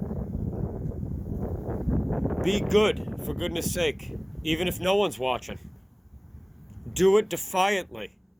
Be good, for goodness sake, even if no one's watching. Do it defiantly.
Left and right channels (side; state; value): both; identical; correlation 1.00